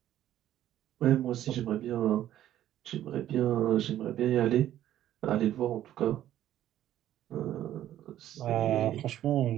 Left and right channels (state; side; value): quieter; left; 12.3 dB